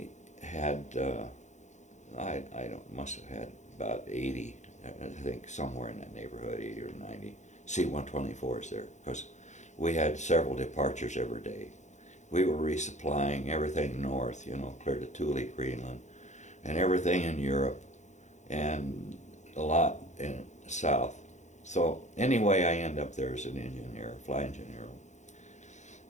must have had about 80, I think somewhere in that neighborhood, 80 or 90 C-124s there, because we had several departures every day. We were resupplying everything north, you know, clear to Thule, Greenland, and everything in Europe, and a lot in the south. So anyway, I end up there as an engineer, flight engineer,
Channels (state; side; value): late; right; 0.34 ms